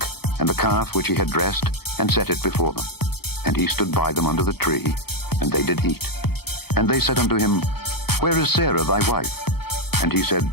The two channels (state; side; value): late; right; 0.96 ms